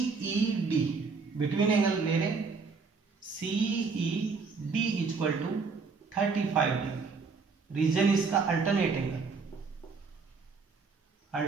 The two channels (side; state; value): left; quieter; 4.7 dB